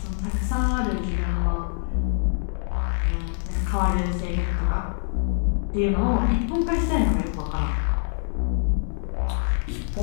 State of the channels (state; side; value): silent; right; digital silence